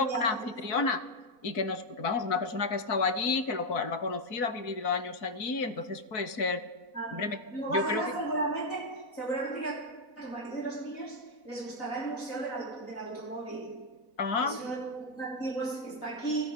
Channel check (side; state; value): right; late; 4.1 ms